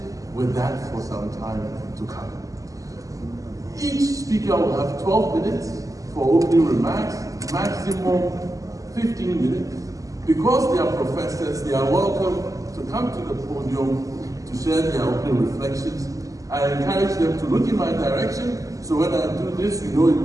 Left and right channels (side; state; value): left; late; 0.16 ms